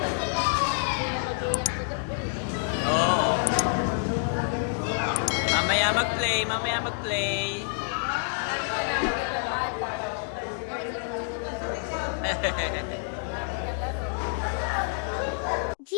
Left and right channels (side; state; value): right; silent; digital silence